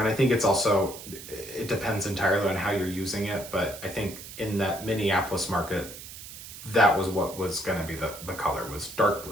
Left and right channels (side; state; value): right; noise; hiss, 13 dB below the sound